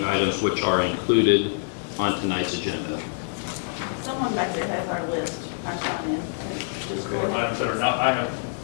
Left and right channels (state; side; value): silent; right; digital silence